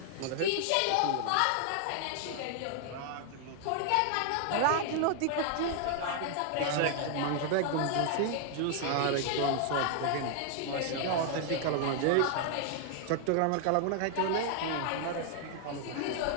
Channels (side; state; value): both; different; correlation 0.00